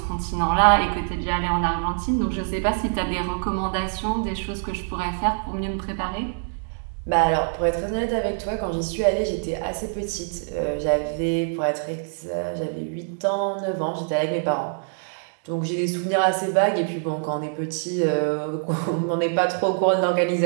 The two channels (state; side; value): silent; left; digital silence